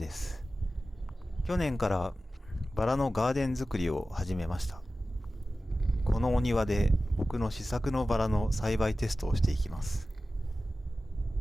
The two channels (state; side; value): normal; both; correlation 0.95